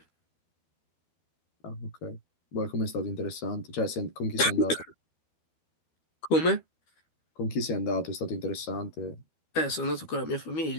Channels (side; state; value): right; late; 12 ms